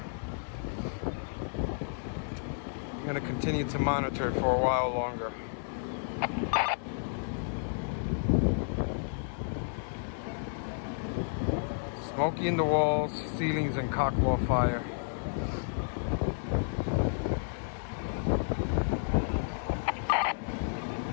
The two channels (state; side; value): silent; right; digital silence